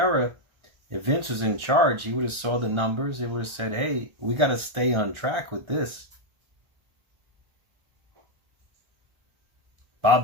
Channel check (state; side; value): late; left; 1.4 ms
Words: If Vince was in charge, he would have saw the numbers. He would have said, hey, we got to stay on track with this.